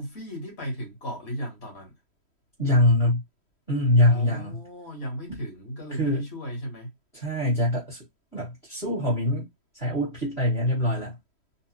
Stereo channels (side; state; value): right; late; 3.1 ms